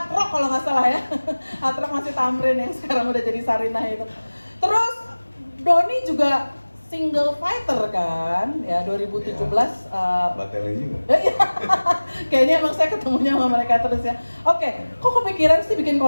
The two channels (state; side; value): inverted; both; correlation -1.00